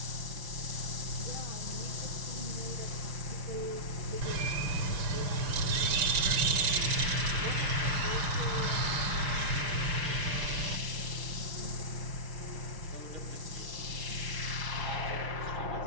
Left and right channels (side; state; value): left; late; 6.2 ms